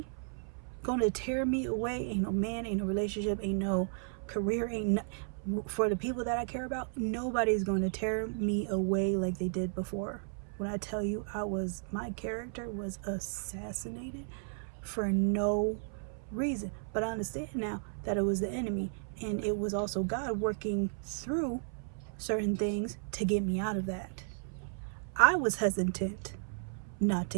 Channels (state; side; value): silent; left; 55 dB below the other